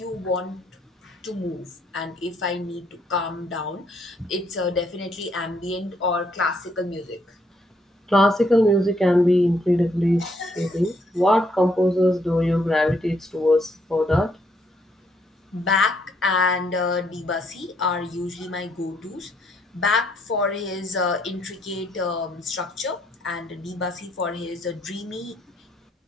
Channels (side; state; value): both; normal; correlation 0.71